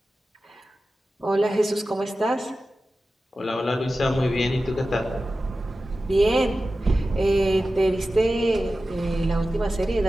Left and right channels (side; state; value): both; normal; correlation 0.94